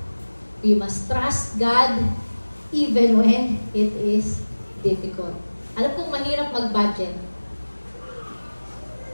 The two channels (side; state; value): both; inverted; correlation -1.00